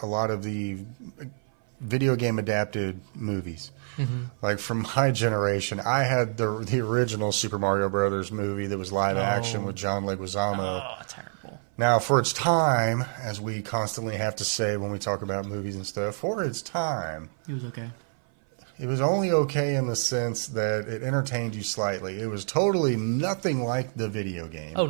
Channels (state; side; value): silent; left; 56 dB below the other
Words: a lot of the video game adapted movies. Mm-hmm. Like from my generation, I had the original Super Mario Brothers movie that was live action with John Leguizamo. Oh, terrible. Now, for its time, as we constantly have to say when we talk about movies and stuff, for its time, it was okay. It was only okay in the sense that it entertained you slightly. It was totally nothing like the video game. Oh,